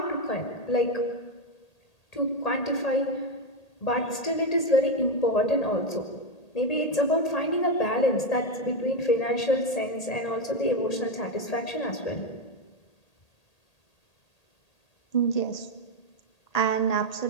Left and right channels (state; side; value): late; right; 1.8 ms